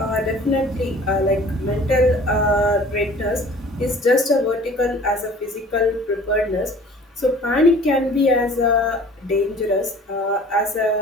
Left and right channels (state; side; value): normal; both; correlation 0.48